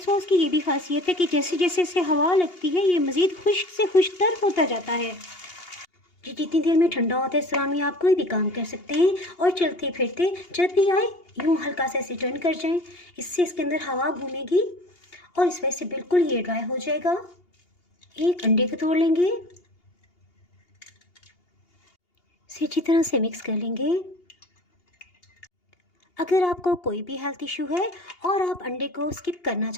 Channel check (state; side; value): late; right; 2.8 ms